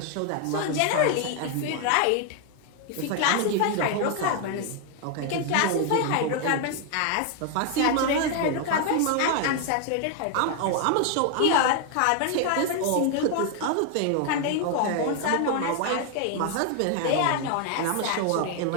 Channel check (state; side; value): different; both; correlation 0.00